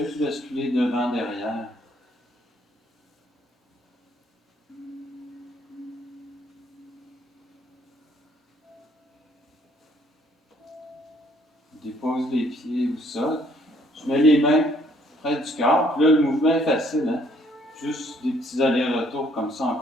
juste basculer devant, derrière. Je dépose les pieds au sol. Je mets les mains près du corps, puis là, le mouvement est facile, hein? Juste des petits allers-retours comme ça en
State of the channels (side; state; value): both; normal; correlation 0.65